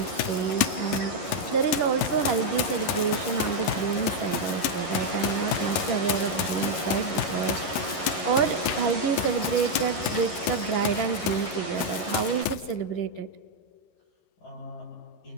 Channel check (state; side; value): late; right; 12 ms